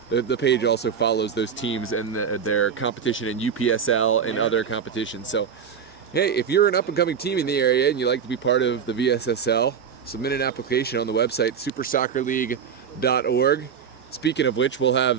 the page also follows those teams and their competition in UPSL and other competitions. So hey, if you're an up-and-coming team in the area and you'd like to be part of the VSSL, submit an application on the website, supersoccerleague.org. Speaking of which, we'll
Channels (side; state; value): left; quieter; 7.3 dB